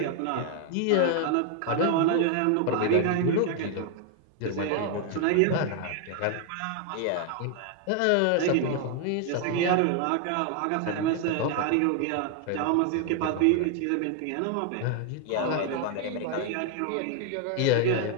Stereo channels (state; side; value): different; both; correlation 0.00